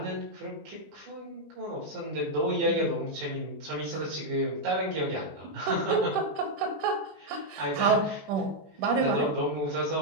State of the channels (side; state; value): left; late; 20 ms